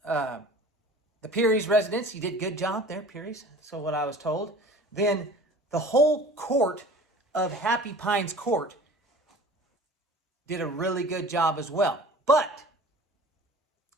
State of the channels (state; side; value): normal; both; correlation 0.43